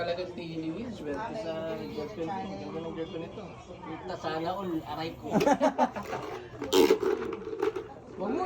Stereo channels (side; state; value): both; identical; correlation 1.00